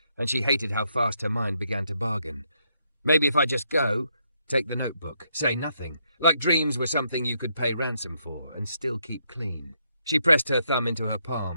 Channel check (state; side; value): inverted; both; correlation -0.76